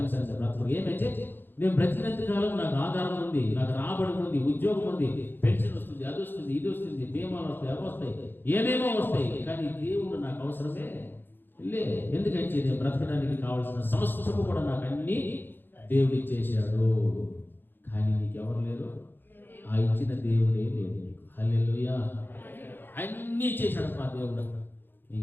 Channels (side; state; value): right; late; 0.097 ms